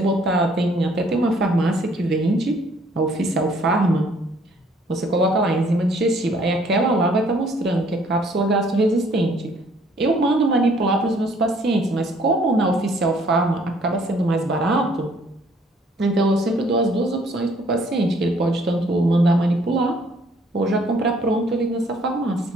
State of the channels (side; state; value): both; normal; correlation 0.61